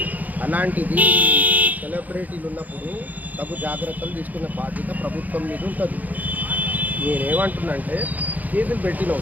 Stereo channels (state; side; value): late; left; 0.080 ms